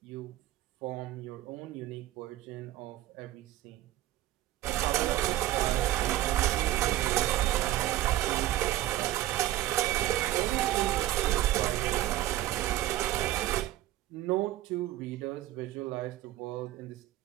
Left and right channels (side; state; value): left; quieter; 14.6 dB